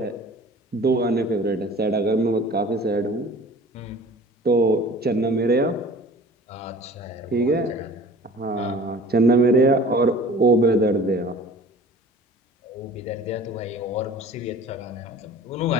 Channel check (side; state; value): both; normal; correlation 0.44